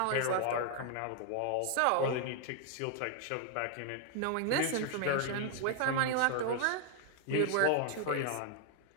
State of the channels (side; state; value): both; different; correlation 0.00